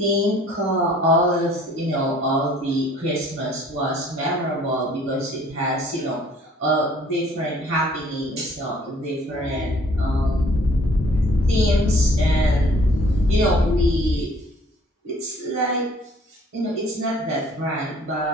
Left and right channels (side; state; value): both; normal; correlation 0.56